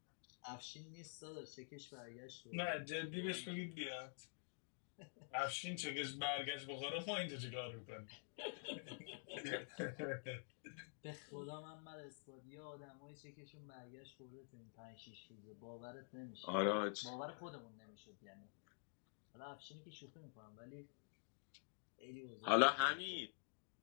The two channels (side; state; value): right; silent; digital silence